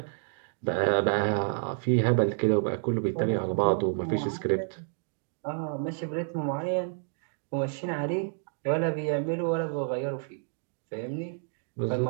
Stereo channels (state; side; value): silent; left; digital silence